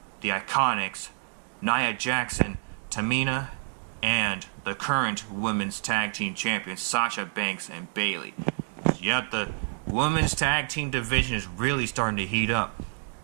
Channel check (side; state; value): left; silent; 58 dB below the other